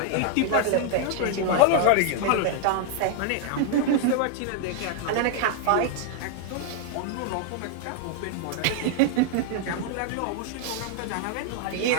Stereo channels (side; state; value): both; different; correlation 0.00